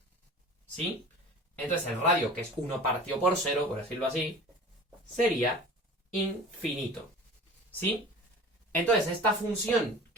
¿Sí? Entonces el radio, que es 1 partido por 0, por decirlo así, sería infinito. ¿Sí? Entonces esta función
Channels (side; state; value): both; normal; correlation 0.40